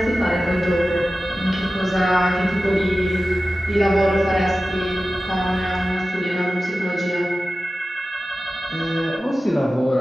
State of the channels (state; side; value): normal; both; correlation 0.95